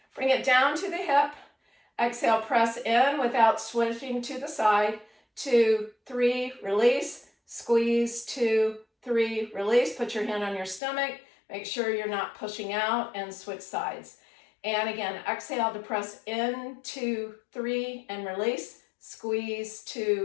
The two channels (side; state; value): right; drops out; at 10.8 s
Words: Bring it down to the hip. Exhale, press in without switching to the side. 2, 3, release. Squeeze 2, 3, release. Put your hand on your stomach. Make sure you're not pushing out, and switch sides. And again, exhale to press in, 2, 3, and release. Squeeze